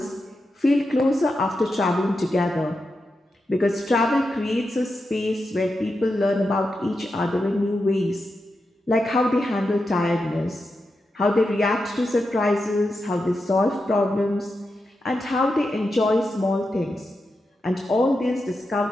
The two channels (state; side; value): normal; both; correlation 0.88